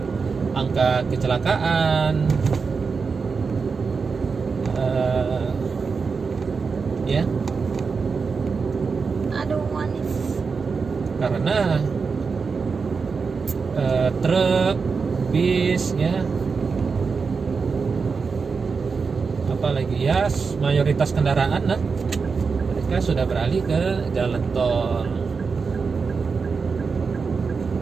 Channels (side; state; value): left; quieter; 5.1 dB